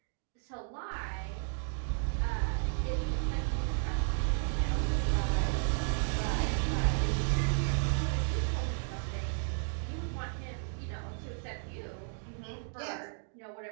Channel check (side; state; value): left; silent; 55 dB below the other